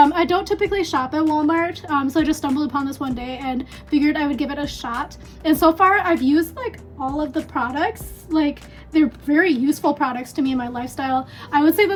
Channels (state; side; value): identical; both; correlation 1.00